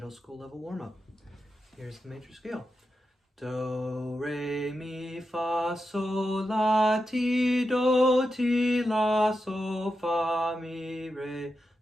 school level warm-up. Here's the major scale. Do, re, mi, fa, sol, la, ti, do, ti, la, sol, fa, mi, re,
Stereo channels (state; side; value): normal; both; correlation 0.88